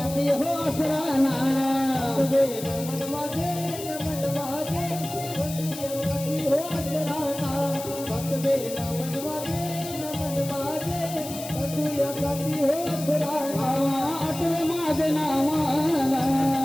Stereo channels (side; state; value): left; noise; hiss, 11 dB below the sound